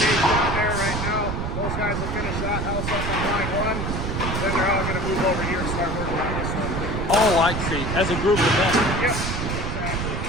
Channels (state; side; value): noise; right; rumble, 2 dB below the sound